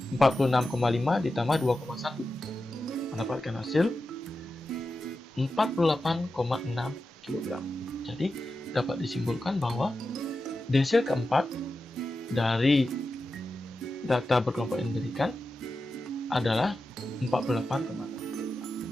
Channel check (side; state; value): both; normal; correlation 0.91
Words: 46,5 ditambah 2,1 mendapatkan hasil 48,6 kg. Jadi dapat disimpulkan bahwa desil keempat dari data berkelompok yang diberikan adalah 48,6 kg.